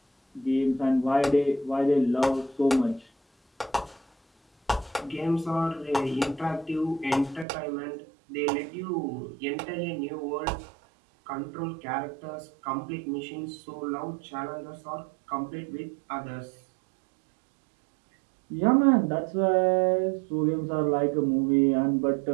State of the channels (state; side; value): drops out; left; at 7.5 s